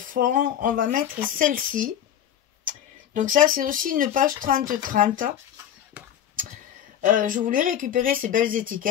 on va mettre celle-ci. Donc ça, c'est aussi une page 30-30. Je voulais récupérer ces belles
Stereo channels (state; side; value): quieter; right; 10.0 dB